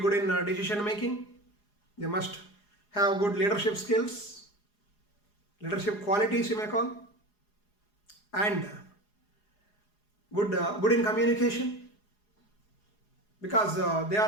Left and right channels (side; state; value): right; late; 4.8 ms